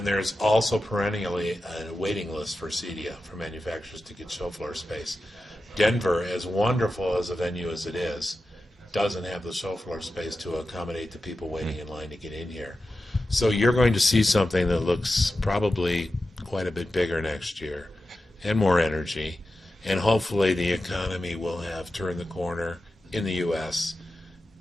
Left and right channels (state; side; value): normal; both; correlation 0.92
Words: there's also perennially a waiting list for CEDIA, for manufacturers to get show floor space. Denver, as wonderful as a venue as it is, doesn't have the show floor space to accommodate the people waiting in line to get in here. So you're going to see something that looks probably quite a bit bigger next year, and more energy. And hopefully the economy will have turned the corner in the U.S.